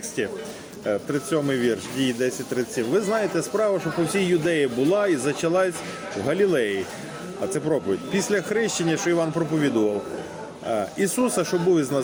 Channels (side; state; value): both; identical; correlation 1.00